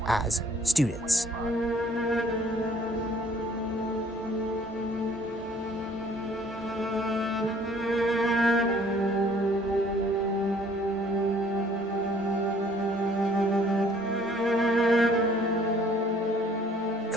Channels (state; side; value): normal; both; correlation 0.58